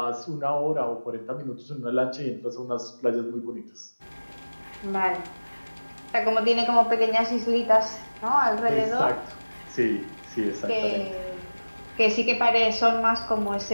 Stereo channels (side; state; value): both; inverted; correlation -1.00